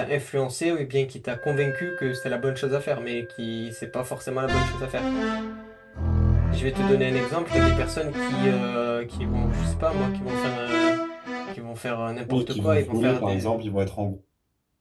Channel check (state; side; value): identical; both; correlation 1.00